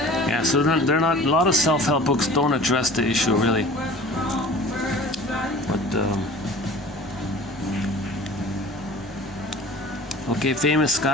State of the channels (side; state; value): both; normal; correlation 0.43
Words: so they're not. A lot of self-help books don't address the issue really. But okay, famous